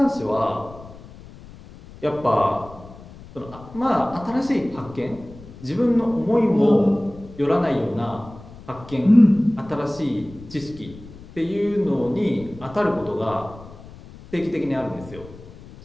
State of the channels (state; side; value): noise; left; rumble, 18 dB below the sound